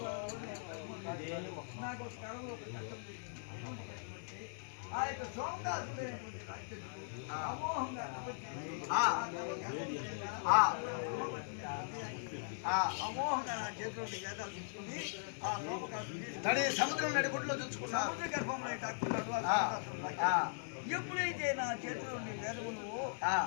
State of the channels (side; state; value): right; silent; 51 dB below the other